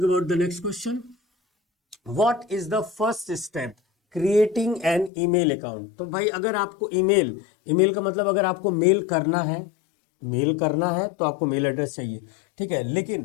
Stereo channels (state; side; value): drops out; right; at 5.1 s